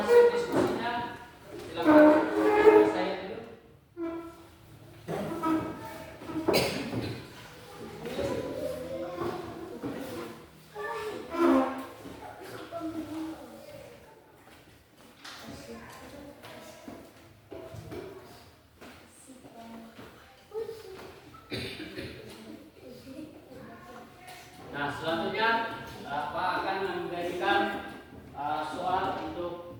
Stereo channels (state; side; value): identical; both; correlation 1.00